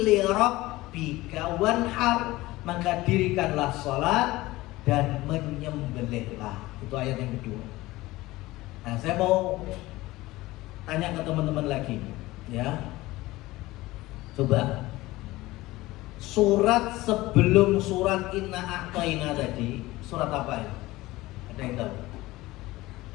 li rabbika wanhar, maka dirikanlah salat dan menyembelihlah. Itu ayat yang kedua. Nah, saya mau tanya ke teman-teman lagi, ya. Coba surat sebelum surat Inna A'taina tadi, surat apa ya? Ada yang tahu?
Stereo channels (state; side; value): quieter; right; 18.8 dB